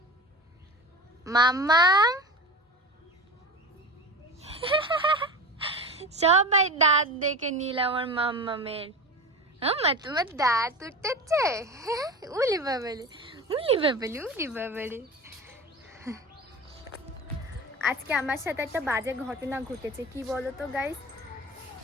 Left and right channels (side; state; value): both; normal; correlation 0.30